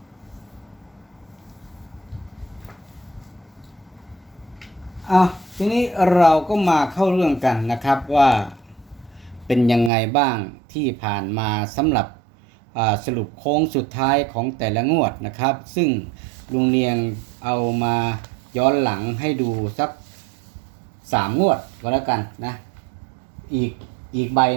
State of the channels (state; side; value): drops out; left; at 9.9 s